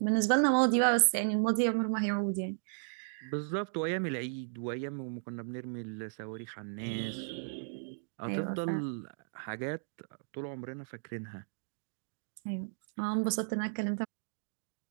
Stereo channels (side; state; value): left; silent; digital silence